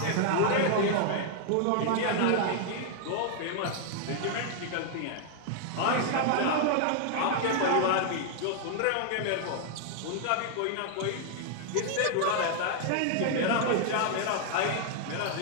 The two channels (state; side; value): different; both; correlation -0.01